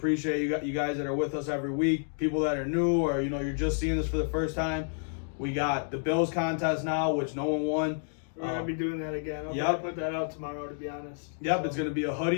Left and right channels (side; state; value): right; silent; digital silence